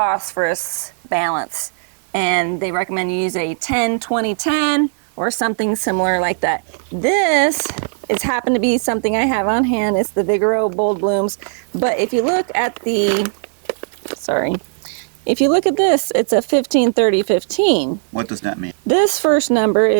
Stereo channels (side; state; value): left; silent; 67 dB below the other